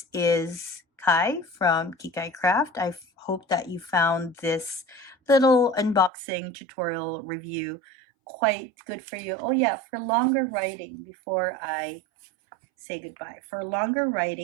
is Kai from Kikai Craft. I hope that you found this little unboxing tutorial review quite good for you. Oh yeah, for longer writing, before I say goodbye, for longer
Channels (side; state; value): left; drops out; at 6.1 s